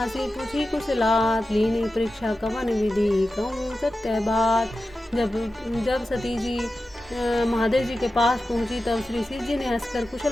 पूछी कुशलात। लीनी परीक्षा कवन विधि, कहूँ सत्य बात। जब सती जी महादेव जी के पास पहुंची तब श्री शिव जी ने हंसकर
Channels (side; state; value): both; normal; correlation 0.93